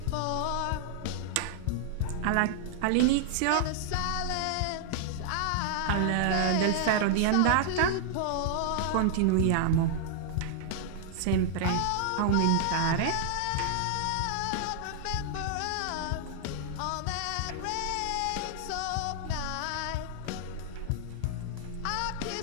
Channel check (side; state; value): both; different; correlation -0.01